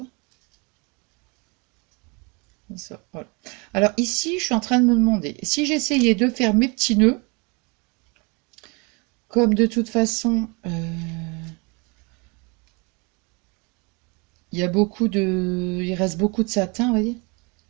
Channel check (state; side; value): quieter; left; 30.3 dB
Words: Comme ça, voilà. Alors, ici, je suis en train de me demander, si j'essayais de faire mes petits nœuds, comme de toute façon... il y a beaucoup de... Il reste beaucoup de satin, vous voyez.